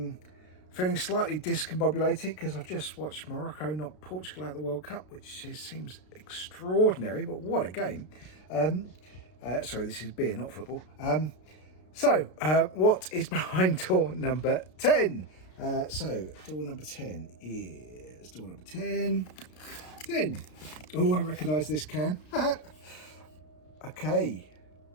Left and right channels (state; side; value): late; right; 33 ms